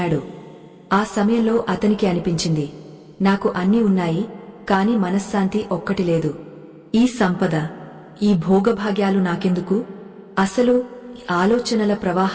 ఆ సమయంలో అతనికి అనిపించింది, నాకు అన్నీ ఉన్నాయి, కాని మనశ్శాంతి ఒక్కటి లేదు. ఈ సంపద, ఈ భోగభాగ్యాలు నాకెందుకు? అసలు ఆలోచనల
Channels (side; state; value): both; identical; correlation 1.00